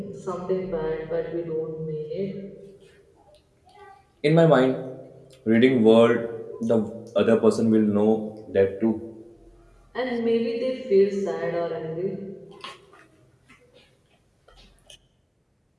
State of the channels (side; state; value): both; identical; correlation 1.00